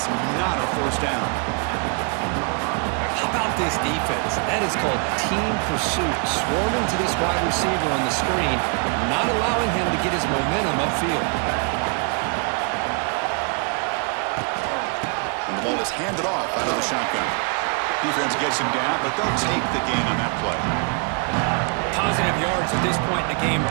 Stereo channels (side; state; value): left; quieter; 37.7 dB